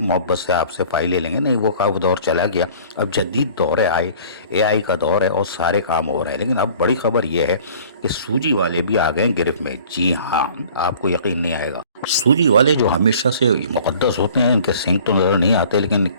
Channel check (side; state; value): both; inverted; correlation -0.49